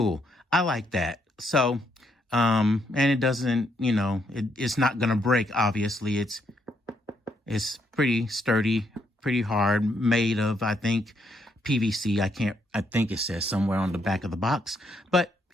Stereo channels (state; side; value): normal; both; correlation 0.74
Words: I like that. So, and it doesn't, it's not going to break, obviously. It's pretty sturdy, pretty hard, made of, I think, PVC. I think it says somewhere on the back of the box. But